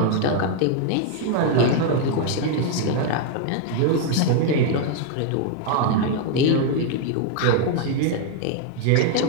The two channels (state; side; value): different; both; correlation 0.00